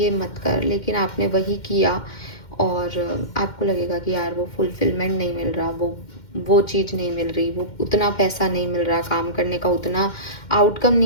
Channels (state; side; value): late; right; 2.1 ms